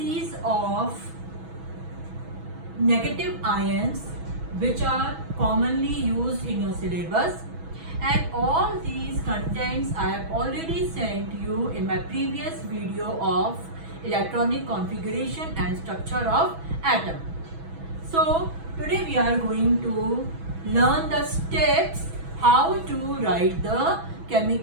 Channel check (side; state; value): left; late; 6.1 ms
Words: of negative ions which are commonly used in your syllabus. And all these contents I have already sent you in my previous video of electronic configuration and structure of atom. So today we are going to learn the steps how to write the